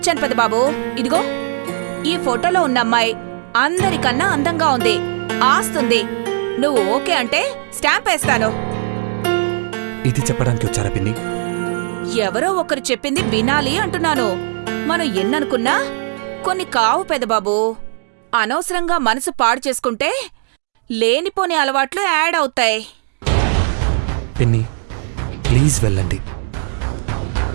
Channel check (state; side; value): silent; left; digital silence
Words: పెదబాబు. ఇదిగో, ఈ ఫోటోలో ఉన్న అమ్మాయి అందరికన్నా అందంగా ఉంది, ఆస్తుంది. నువ్వు ఓకే అంటే స్టాంప్ వేస్తాను. ఇది చెప్పడానికి వచ్చారా పిన్ని? ఎవరో ఒకరు చెప్పింది వినాలి అంటున్నాను. మనం ఎన్ననుకున్నా కొన్ని కావు పెదబాబు. అనవసరంగా మనసు పాడు చేసుకుంటే లేనిపోని అలవాట్లు యాడ్ అవుతాయి. పిన్ని ప్లీజ్ వెళ్ళండి.